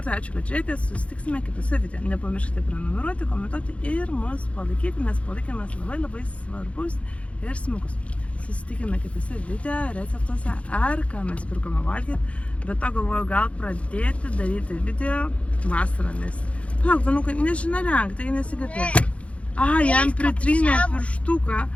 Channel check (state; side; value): late; right; 0.063 ms